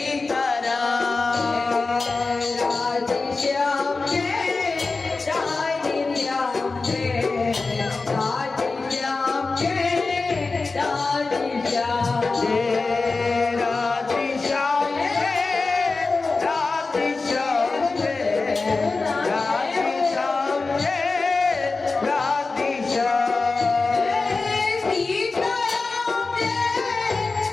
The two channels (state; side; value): quieter; right; 3.9 dB